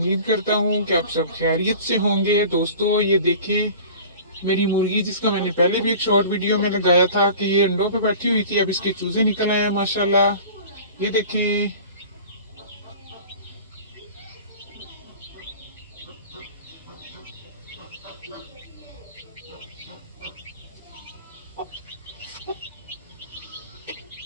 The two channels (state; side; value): inverted; both; correlation -0.41